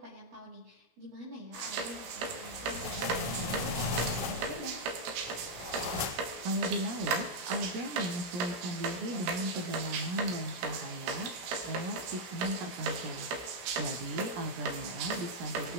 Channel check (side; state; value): left; late; 17 ms